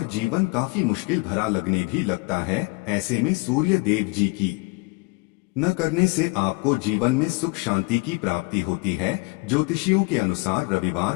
जीवन काफी मुश्किल भरा लगने भी लगता है। ऐसे में सूर्य देव जी की न करने से आपको जीवन में सुख शांति की प्राप्ति होती है। ज्योतिषियों के अनुसार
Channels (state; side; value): quieter; right; 28.7 dB